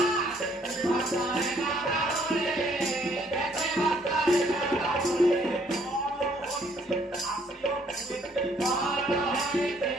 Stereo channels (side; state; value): both; normal; correlation 0.64